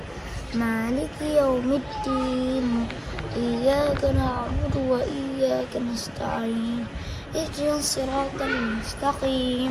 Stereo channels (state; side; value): identical; both; correlation 1.00